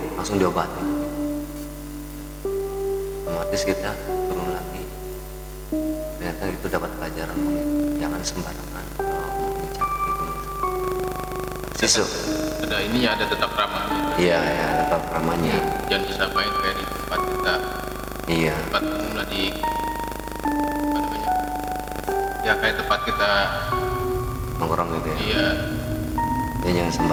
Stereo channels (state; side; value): identical; both; correlation 1.00